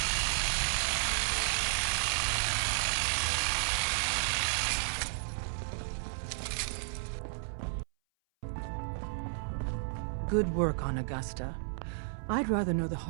Good work on Augusta. I'd rather know the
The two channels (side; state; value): left; silent; 56 dB below the other